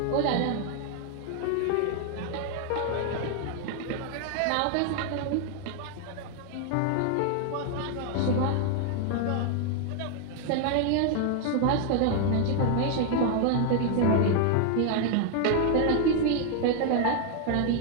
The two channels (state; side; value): different; both; correlation 0.00